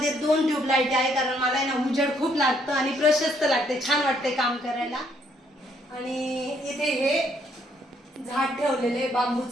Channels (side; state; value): both; normal; correlation 0.69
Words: 2 ट्यूबलाईट आहे, कारण मला ना उजेड खूप लागतं आणि प्रशस्त लागते, छान वाटते काम करायला. आणि इथे हे झाड ठेवलेले,